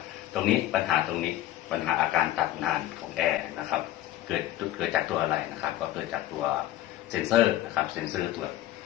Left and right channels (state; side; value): quieter; right; 14.2 dB